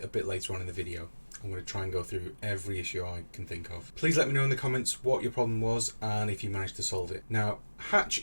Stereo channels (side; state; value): both; inverted; correlation -1.00